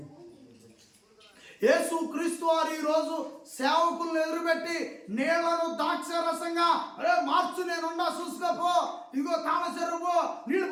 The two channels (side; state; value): both; identical; correlation 1.00